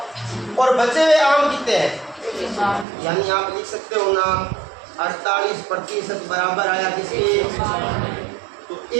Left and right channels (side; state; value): left; drops out; at 2.9 s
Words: और बचे हुए आम कितने हैं, यानी आप लिख सकते हो ना 48% बराबर आया किसके, तो